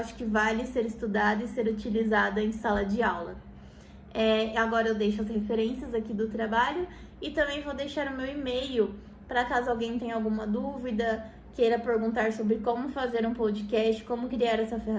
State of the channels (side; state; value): both; identical; correlation 1.00